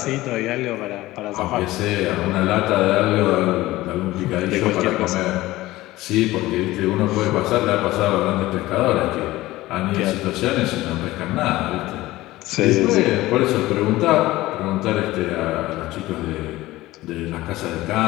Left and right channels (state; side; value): quieter; right; 17.6 dB